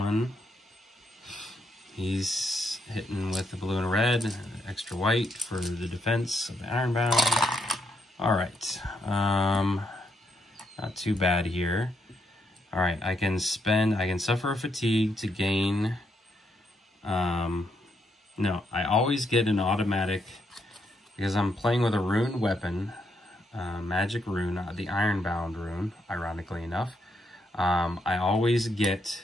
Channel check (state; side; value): normal; both; correlation 0.78